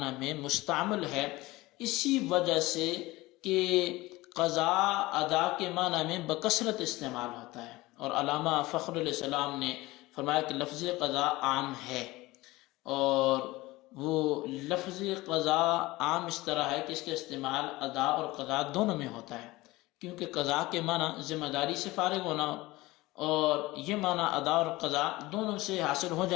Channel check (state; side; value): quieter; right; 19.9 dB